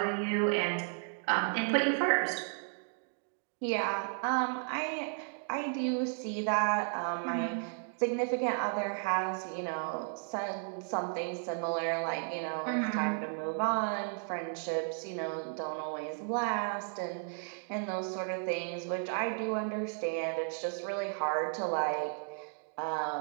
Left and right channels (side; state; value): left; silent; 55 dB below the other